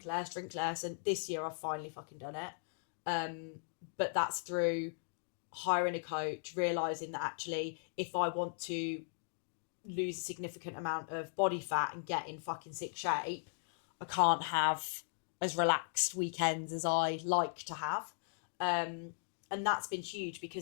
less. And this year I've finally fucking done it. But that's through hiring a coach, realising that actually, if I want to lose a significant amount of body fat and get in fucking sick shape, I can't have as relaxed weekends as I like to have. And that's been huge,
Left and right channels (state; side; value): silent; right; digital silence